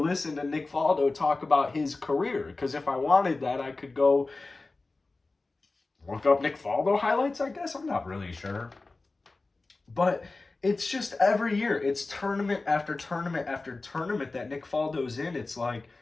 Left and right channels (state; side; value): quieter; right; 3.4 dB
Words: to Nick Faldo talk about his career. Because if I wanted that, I could go look up Nick Faldo highlights, I guess. I'm not really sure. But it's just every year, it's tournament after tournament after tournament that Nick Faldo's in. It's like,